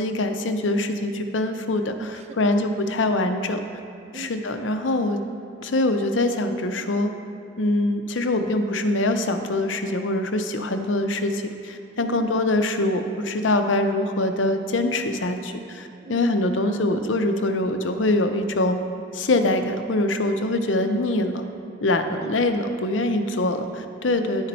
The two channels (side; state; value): both; normal; correlation 0.27